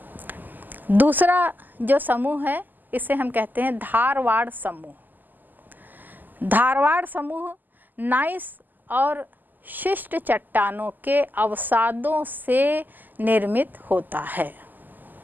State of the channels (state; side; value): late; left; 0.087 ms